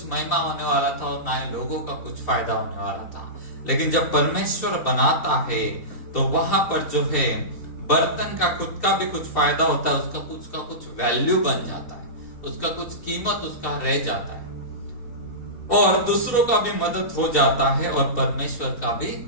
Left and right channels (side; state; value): right; late; 3.5 ms